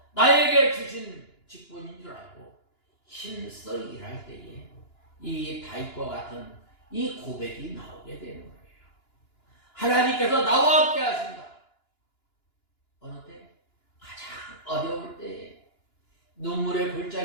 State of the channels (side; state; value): right; late; 2.9 ms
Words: 나에게 주신 직분인 줄 알고 힘써 일할 때에 이 다윗과 같은 이 고백이 나오게 되는 거예요. 하나님께서 나와 함께 하신다. 어느 때? 가장 어려울 때에 눈물의